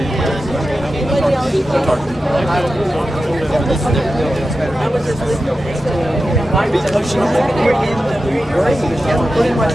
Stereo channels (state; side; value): normal; both; correlation 0.91